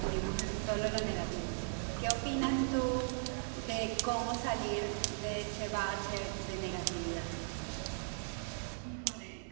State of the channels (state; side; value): silent; left; digital silence